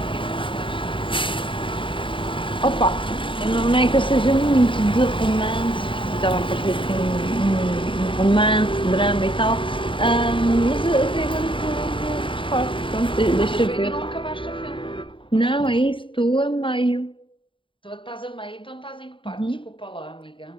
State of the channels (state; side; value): late; right; 0.25 ms